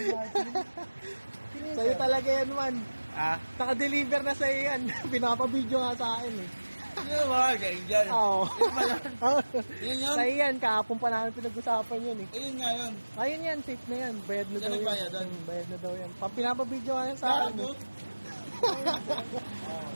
Sa'yo talaga yan, man. Ah? Naka-deliver na sa'yo yan. Pinapabidyo nga sa akin eh. Ano ba? Angel. Oo. Yun ba yun? Yun yun? Sa'yo yan, kahapon pa namin pinag-usapan yan eh. Ayun nga yun. Ayun yan, safe na yan. Bayad na Siya daw yan. nagbayad doon? Bayad na daw yan. Pinapabidyo nga yan sa akin Gago. eh.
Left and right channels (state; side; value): inverted; both; correlation -1.00